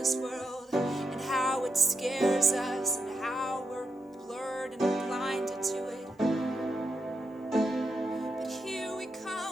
world and how it scares us and how we're blurred and blinded to it. But here we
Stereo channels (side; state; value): both; normal; correlation 0.84